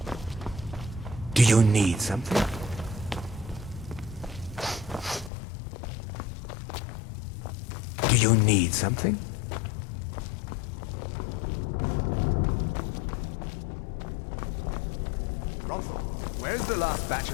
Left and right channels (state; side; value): drops out; right; at 5.3 s